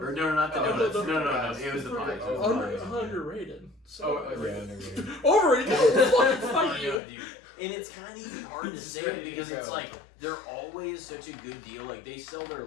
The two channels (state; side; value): drops out; right; at 7.0 s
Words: no, not the Oh, donuts. the No, pies. it was the pies. Oh, Underrated. So Oh, yeah, underrated. Overrated. No, fuck Oh, you. no, dude. And it's kind of even hard to say because it's like they're always such a good deal. Like they sell their